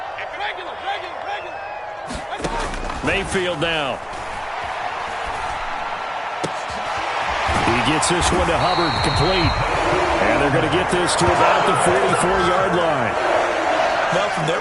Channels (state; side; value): identical; both; correlation 1.00